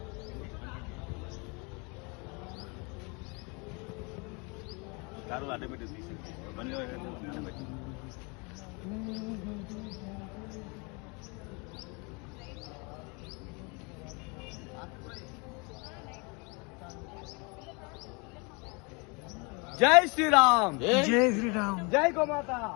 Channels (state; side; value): quieter; right; 30.6 dB